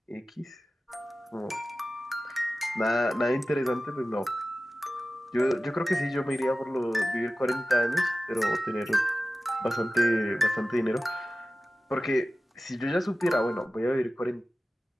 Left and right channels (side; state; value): both; normal; correlation 0.95